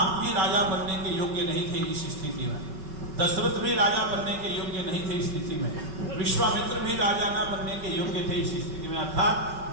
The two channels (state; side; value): late; left; 5.3 ms